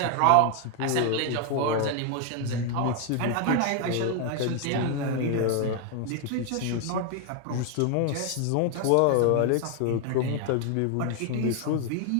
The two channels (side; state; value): both; different; correlation 0.01